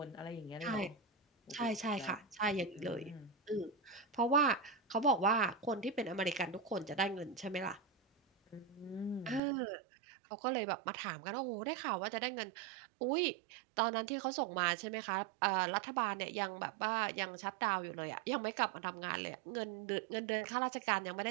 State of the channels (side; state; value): left; drops out; at 9.4 s